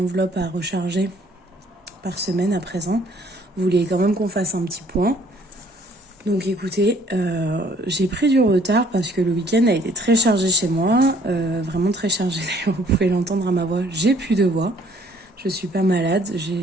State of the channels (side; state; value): both; normal; correlation 0.60